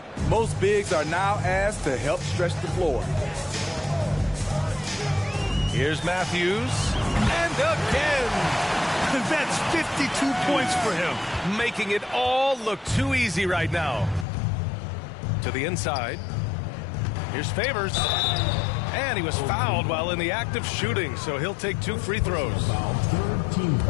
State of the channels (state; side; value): drops out; right; at 14.2 s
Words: most bigs are now asked to help stretch the floor. Here's Matthews. And again. That's 52 points for him. Making it all look too easy right now. To the inside. Here's Favors. And he was fouled while in the act of shooting, so he'll take 2 free throws.